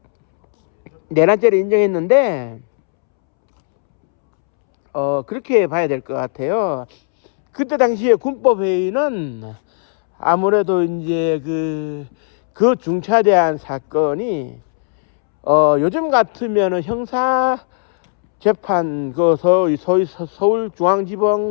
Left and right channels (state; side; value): silent; right; 68 dB below the other